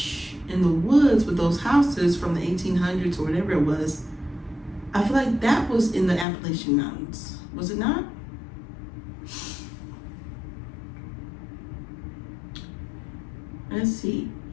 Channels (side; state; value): right; drops out; at 6.2 s